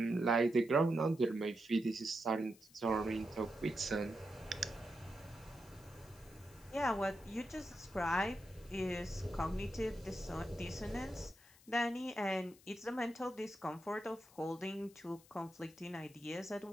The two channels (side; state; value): left; noise; hiss, 25 dB below the sound